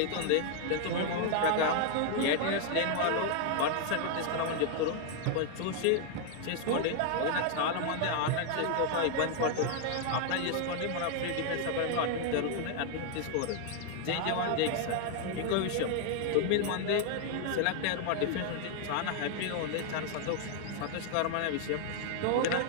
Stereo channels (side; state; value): both; different; correlation 0.00